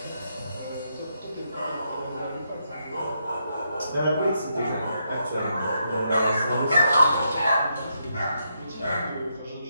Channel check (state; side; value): inverted; both; correlation -0.80